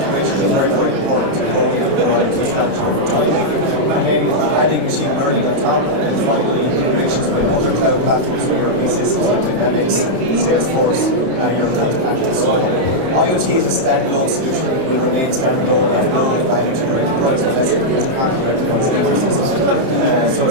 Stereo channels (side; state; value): left; late; 30 ms